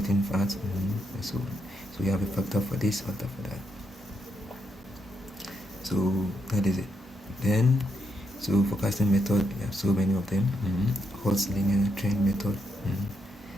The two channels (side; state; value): both; normal; correlation 0.80